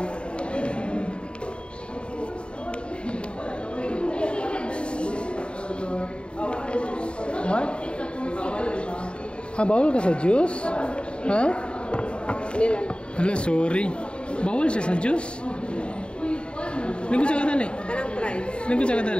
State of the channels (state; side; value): late; right; 0.054 ms